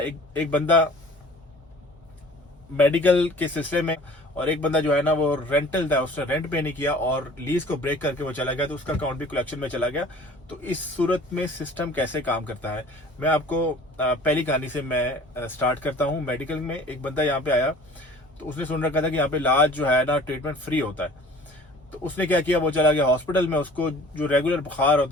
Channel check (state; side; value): normal; both; correlation 0.48